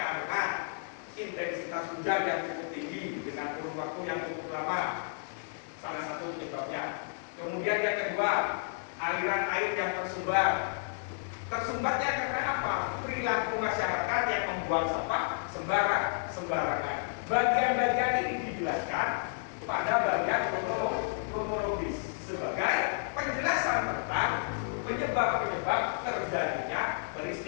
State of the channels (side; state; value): right; silent; digital silence